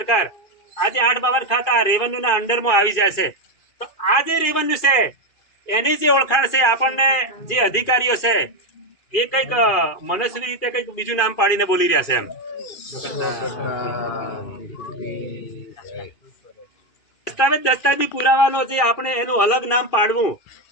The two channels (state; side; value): late; right; 2.5 ms